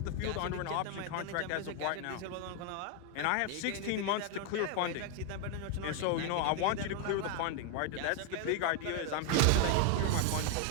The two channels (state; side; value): different; both; correlation 0.01